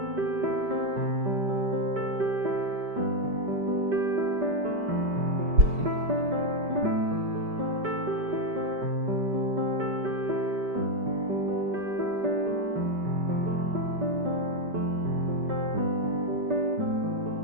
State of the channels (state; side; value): late; left; 5.2 ms